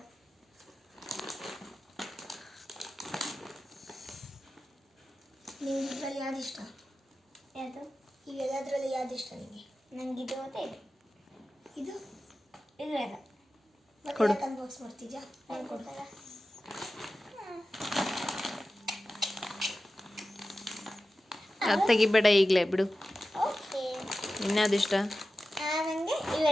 ನಿಮ್ಗೆ ಇದರಲ್ಲಿ ಯಾವ್ದು ಇಷ್ಟ? ಯಾವುದು? ಇವೆಲ್ಲದರಲ್ಲಿ ಯಾವ್ದು ಇಷ್ಟ ನಿಮಗೆ? ನಂಗೆ ಇದು ಮತ್ತೆ ಇದು. ಇದು ಇದು ಎಲ್ಲ ಮತ್ತೆ ಅನ್ಬಾಕ್ಸ್ ಮಾಡ್ತಿದ್ಯಾ? ಕೊಡ್ತಾರ ಅದು ತೆಗಿಬೇಡ ಈಗಲೇ ಬಿಡು. ಓಕೆ. ಇನ್ಯಾವುದು ಇಷ್ಟ? ನನಗೆ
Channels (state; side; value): normal; both; correlation 0.94